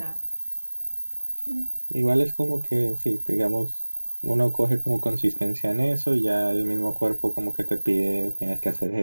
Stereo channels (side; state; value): both; inverted; correlation -1.00